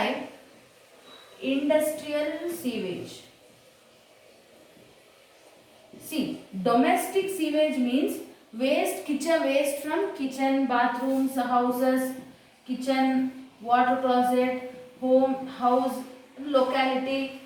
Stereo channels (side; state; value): both; identical; correlation 1.00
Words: industrial sewage. See, domestic sewage means kitchen waste from kitchen, bathrooms, houses, kitchen, water closet, home, house, locality,